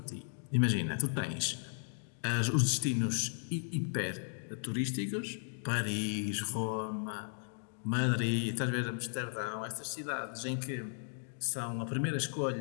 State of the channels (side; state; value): right; silent; digital silence